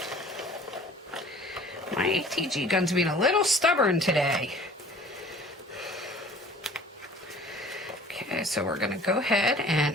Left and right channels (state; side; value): normal; both; correlation 0.48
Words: My ATG gun's being a little stubborn today. Okay, so we're going to go ahead